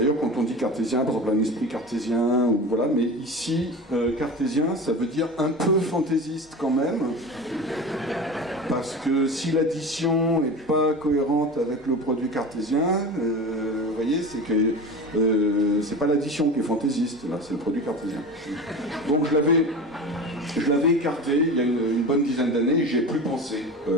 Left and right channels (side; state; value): both; normal; correlation 0.31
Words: quand on dit cartésien, par exemple un esprit cartésien, ou voilà, mais ici, cartésien, ça veut dire un peu fantaisiste quand même, parce que si l'addition n'est pas cohérente avec le produit cartésien, vous voyez, c'est que c'est pas l'addition qui est fantaisiste, là, c'est le produit cartésien. Donc je je l'avais écarté il y a une bonne dizaine d'années et j'ai plus pensé